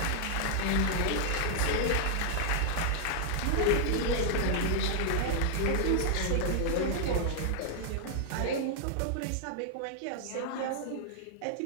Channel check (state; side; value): different; both; correlation -0.01